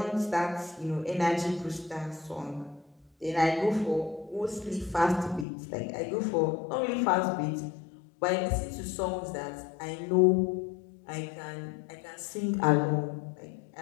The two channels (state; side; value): drops out; right; at 5.5 s